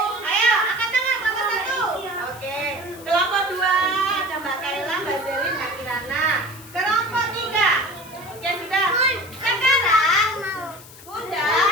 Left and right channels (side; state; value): left; noise; hiss, 19 dB below the sound